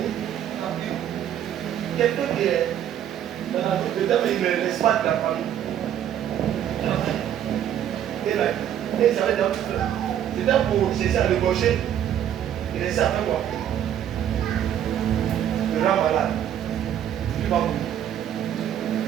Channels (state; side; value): quieter; left; 10.3 dB